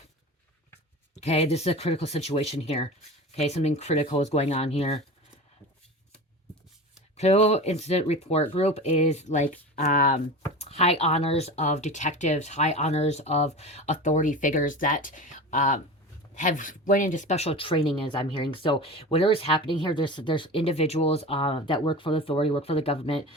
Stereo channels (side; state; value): both; normal; correlation 0.31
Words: Okay, this is a critical situation here. Okay, something critical is going on here. Critical incident report group is like high honors of detectives, high honors of authority figures that have went into special training, as I'm hearing. So whatever is happening here, there's individuals that work for the authority, work for the government,